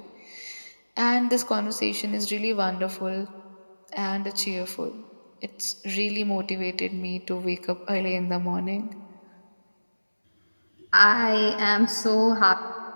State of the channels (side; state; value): both; inverted; correlation -1.00